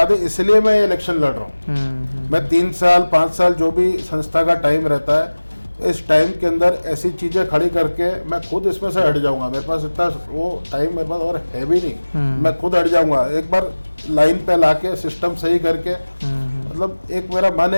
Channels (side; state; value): both; inverted; correlation -1.00